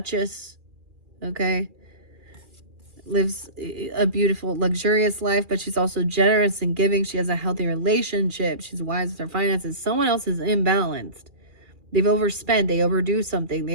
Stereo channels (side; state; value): left; late; 2.4 ms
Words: okay? Lives a beautiful, luxurious life, but she's also generous and giving. She has a healthy relationship. She's wise with her finances. Someone else is imbalanced. They've overspent. They overdo something.